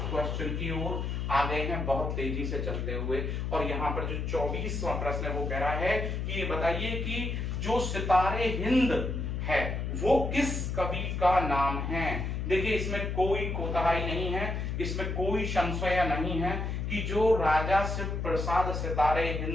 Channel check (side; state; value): left; noise; hum, 2 dB below the sound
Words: क्वेश्चन की ओर आ गए हैं बहुत तेजी से चलते हुए। और यहाँ पर जो 24वां प्रश्न है वो कह रहा है कि ये बताइए कि जो सितारे हिंद है वो किस कवि का नाम है। देखिए इसमें कोई कोताही नहीं है, इसमें कोई संशय नहीं है कि जो राजा शिव प्रसाद सितारे